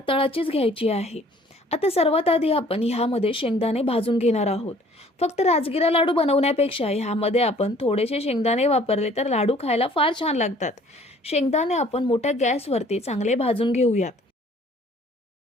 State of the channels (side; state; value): both; normal; correlation 0.55